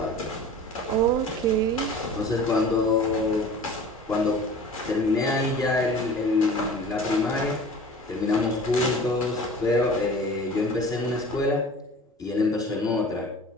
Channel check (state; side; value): normal; both; correlation 0.42